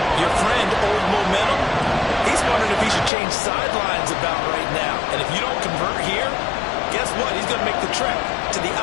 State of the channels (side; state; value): right; drops out; at 3.1 s